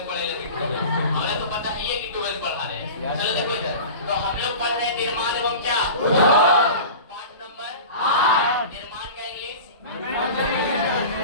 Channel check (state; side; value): inverted; both; correlation -0.34